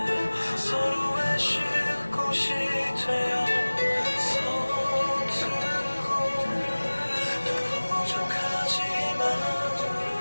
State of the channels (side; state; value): both; inverted; correlation -1.00